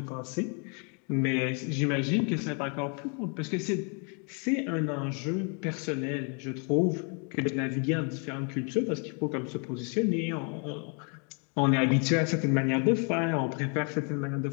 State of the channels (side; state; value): right; quieter; 37.7 dB